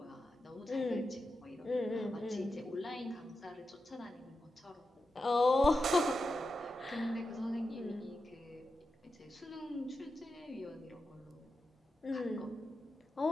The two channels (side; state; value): both; normal; correlation 0.89